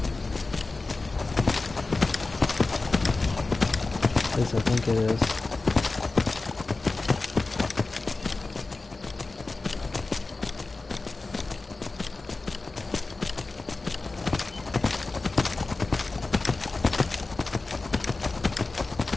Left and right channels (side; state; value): right; quieter; 3.6 dB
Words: At least I think it is.